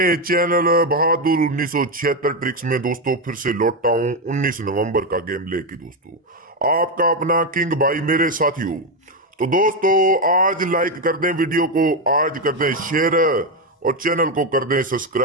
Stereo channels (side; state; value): both; normal; correlation 0.08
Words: चैनल बहादुर 1976 ट्रिक्स में दोस्तों फिर से लौटा हूं 19 नवंबर का गेम लेके दोस्तों। आपका अपना किंग भाई मेरे साथियों। तो दोस्तों आज लाइक कर दें वीडियो को, आज कर दें शेयर और चैनल को कर दें